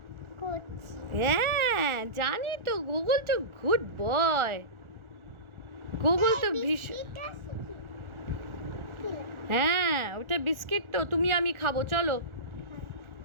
করছি। হ্যাঁ, জানি তো, গুগল তো গুড বয়। গুগল তো ভীষণ। হ্যাঁ, ওটা বিস্কিট তো। তুমি আমি খাবো, চলো।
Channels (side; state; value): left; late; 1.4 ms